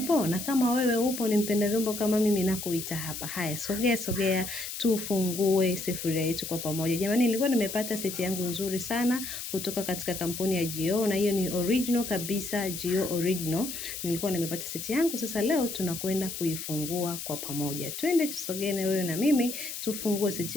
Na kama wewe upo ni mpenda vyombo kama mimi nakuita hapa. Haya, sogea, tufungue sufuria yetu kwa pamoja. Jamani, nilikuwa nimepata seti yangu nzuri sana kutoka katika kampuni ya Gio, na hiyo ni original kabisa, Gio original. Nilikuwa nimepata seti yangu, sasa leo tunakwenda kuifungua kwa pamoja. Twende tusogee na wewe na mimi, tufungue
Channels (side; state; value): left; noise; hiss, 7 dB below the sound